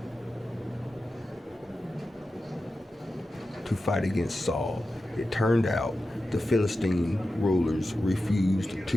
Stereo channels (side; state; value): both; normal; correlation 0.92